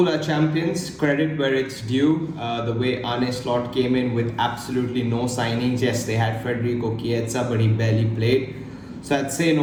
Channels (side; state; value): both; identical; correlation 1.00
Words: are champions, credit where it's due. The way Arne Slot came in with absolutely no signings. Yes, they had Federico Chiesa, but he barely played. So I'd say